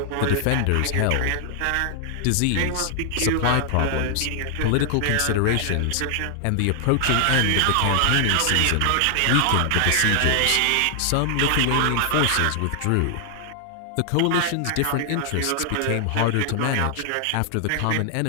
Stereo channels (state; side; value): different; both; correlation 0.00